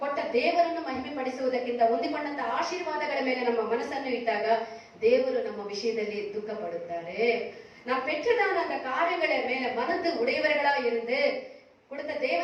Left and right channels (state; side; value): identical; both; correlation 1.00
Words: ಕೊಟ್ಟ ದೇವರನ್ನು ಮಹಿಮೆ ಪಡಿಸುವುದಕ್ಕಿಂತ ಹೊಂದಿಕೊಂಡಂತ ಆಶೀರ್ವಾದಗಳ ಮೇಲೆ ನಮ್ಮ ಮನಸ್ಸನ್ನು ಇಟ್ಟಾಗ ದೇವರು ನಮ್ಮ ವಿಷಯದಲ್ಲಿ ದುಃಖ ಪಡುತ್ತಾರೆ. நாம் பெற்றதான அந்த காரியங்களை மேல மனது உடையவர்களா இருந்து கொடுத்த